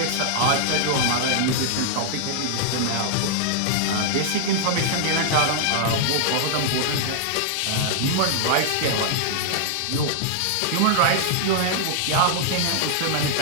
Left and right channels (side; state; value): both; different; correlation -0.01